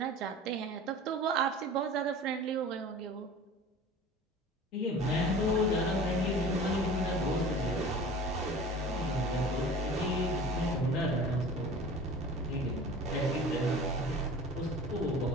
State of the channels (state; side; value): normal; both; correlation 0.40